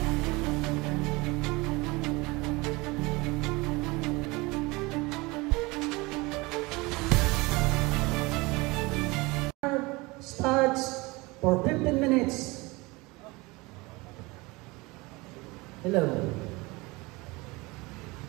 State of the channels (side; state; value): left; quieter; 23.8 dB